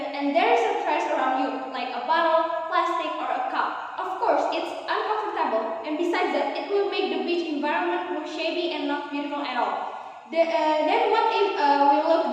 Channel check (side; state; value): both; identical; correlation 1.00